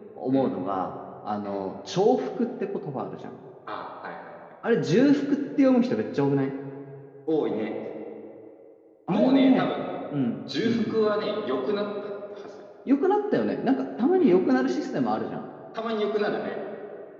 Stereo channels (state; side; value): identical; both; correlation 1.00